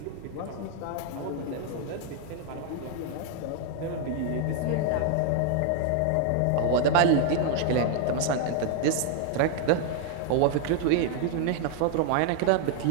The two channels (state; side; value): different; both; correlation 0.00